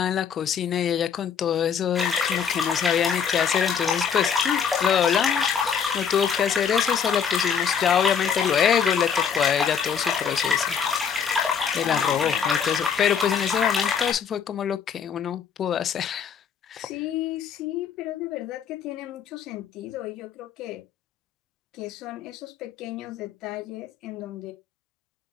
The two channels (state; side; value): quieter; right; 7.2 dB